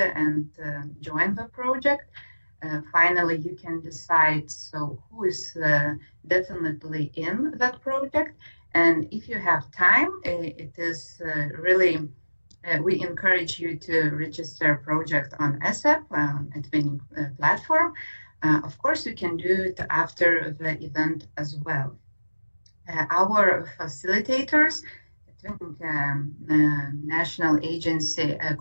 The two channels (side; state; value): both; inverted; correlation -1.00